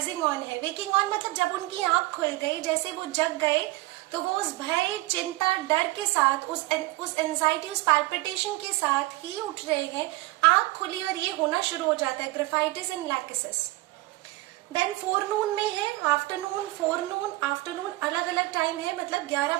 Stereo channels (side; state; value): left; quieter; 19.8 dB